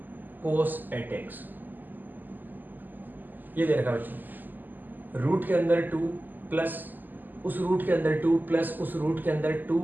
cos 8x, ये दे रखा बच्चों। रूट के अंदर 2 प्लस उस रूट के अंदर 2 प्लस उस रूट के अंदर 2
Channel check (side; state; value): left; late; 0.087 ms